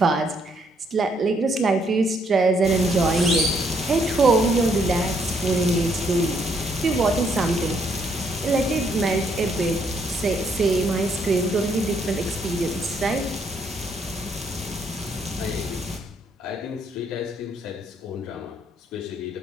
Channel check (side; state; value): both; normal; correlation 0.71